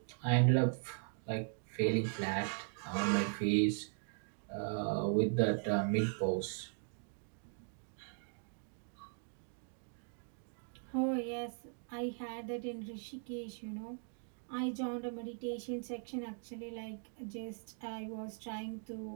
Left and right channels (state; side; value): silent; left; 52 dB below the other